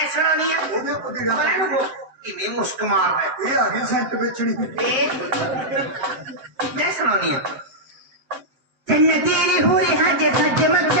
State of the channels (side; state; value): left; late; 7.5 ms